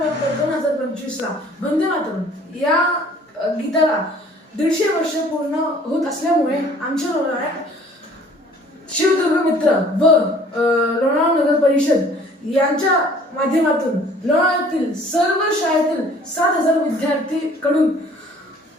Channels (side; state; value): both; normal; correlation 0.54